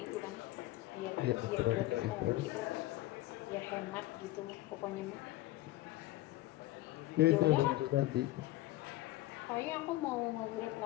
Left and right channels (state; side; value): quieter; right; 16.9 dB